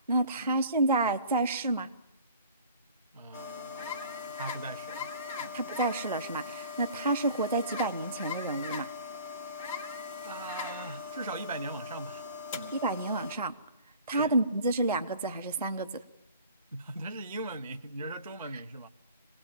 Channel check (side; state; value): both; inverted; correlation -0.47